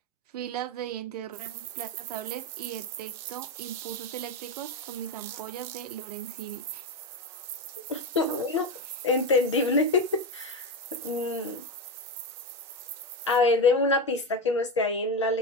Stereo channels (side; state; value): both; normal; correlation 0.15